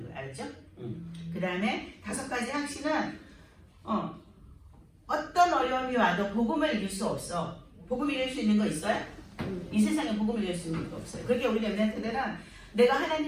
거예요. 알았죠? 그 다음에 5가지 확신은 어떤 어려움이 와도 복음을 이길 수 없어. 복음 이길 수 있는 거 있어요? 이 세상에 복음을 이길 수 있는 거 없어요. 그렇게 우리 랩런트들은 내가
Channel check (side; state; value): both; identical; correlation 1.00